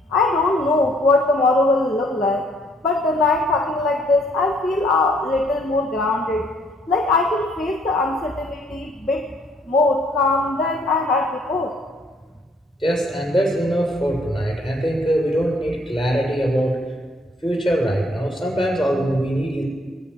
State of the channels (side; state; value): both; normal; correlation 0.65